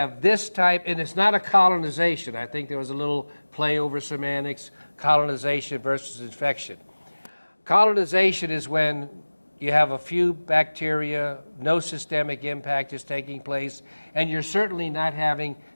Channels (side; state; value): both; inverted; correlation -1.00